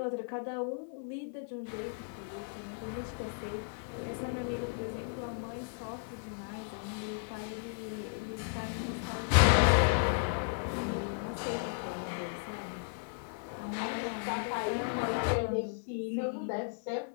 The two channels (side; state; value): right; silent; 55 dB below the other